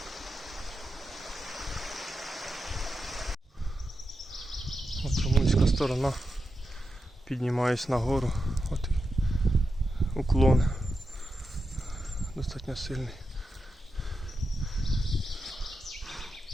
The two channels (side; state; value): both; normal; correlation 0.88